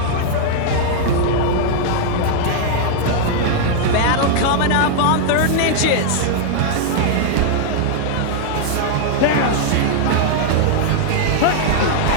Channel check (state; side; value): different; both; correlation -0.01